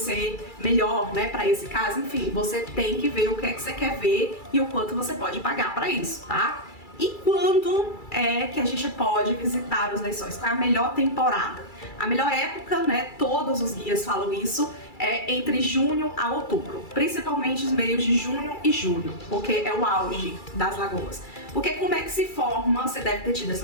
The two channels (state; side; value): late; right; 2.3 ms